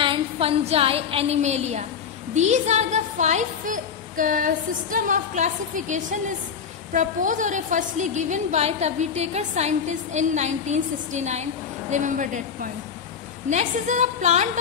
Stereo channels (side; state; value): right; quieter; 6.9 dB